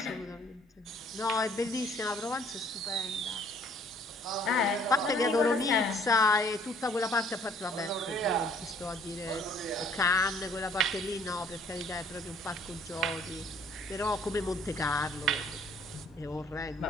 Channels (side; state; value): both; normal; correlation 0.59